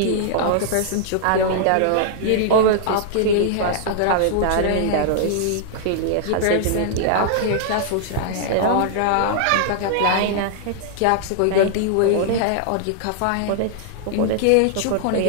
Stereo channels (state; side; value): different; both; correlation -0.01